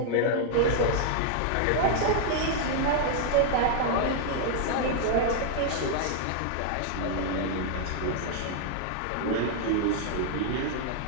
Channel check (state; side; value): different; both; correlation 0.00